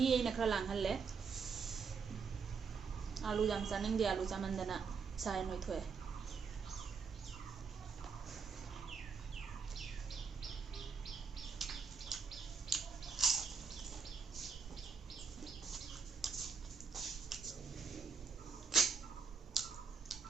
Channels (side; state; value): left; quieter; 5.6 dB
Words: aina khara langhalle alu jam saning di alu chamandana sai noi thoe